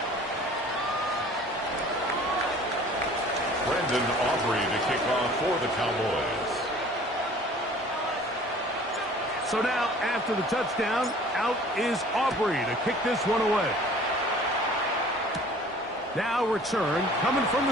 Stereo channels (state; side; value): normal; both; correlation 0.49